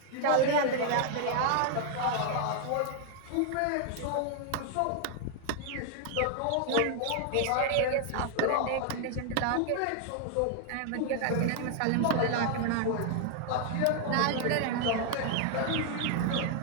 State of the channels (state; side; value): different; both; correlation 0.00